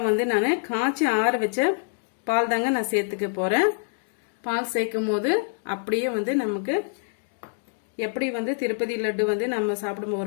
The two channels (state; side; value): silent; right; digital silence